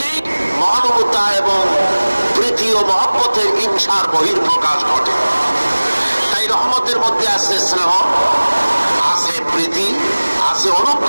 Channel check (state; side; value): inverted; both; correlation -1.00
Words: মহানুভবতা এবং প্রীতি ও মহব্বতের হিংসার বহির্প্রকাশ ঘটে। তাই রহমতের মধ্যে আছে স্নেহ, আছে প্রীতি, আছে